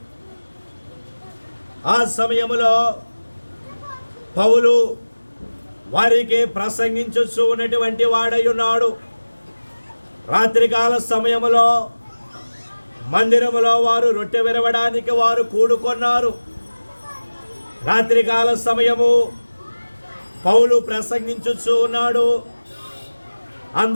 ఆ సమయములో పౌలు వారికి ప్రసంగించుచూ ఉన్నటువంటి వాడై ఉన్నాడు. రాత్రికాల సమయములో మందిరములో వారు రొట్టె విరవడానికి వారు కూడుకున్నారు. రాత్రికాల సమయము పౌలు ప్రసంగించుచూ ఉన్నాడు.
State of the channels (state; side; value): inverted; both; correlation -1.00